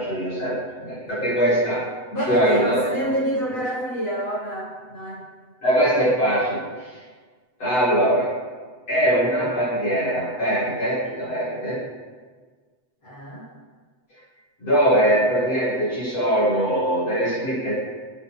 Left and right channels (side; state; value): right; late; 7.9 ms